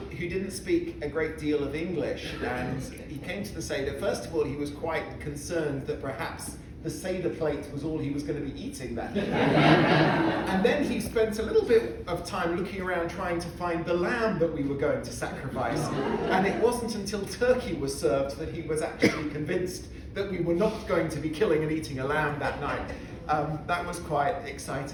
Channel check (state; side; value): identical; both; correlation 1.00